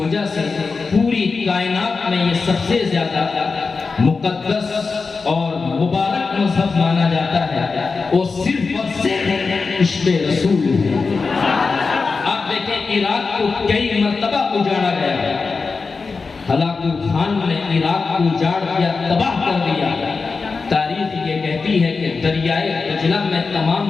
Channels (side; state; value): right; quieter; 4.5 dB